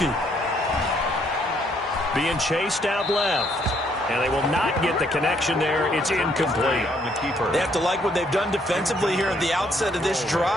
Being chased out left. And they will not get the connection there. It's incomplete. They have to like what they've done defensively here at the outset of this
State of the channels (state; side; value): normal; both; correlation 0.69